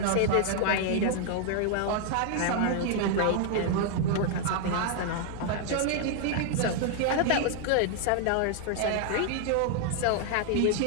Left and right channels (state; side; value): different; both; correlation 0.00